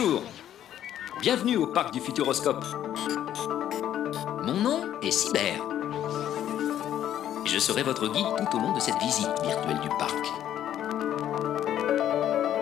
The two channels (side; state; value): right; quieter; 11.1 dB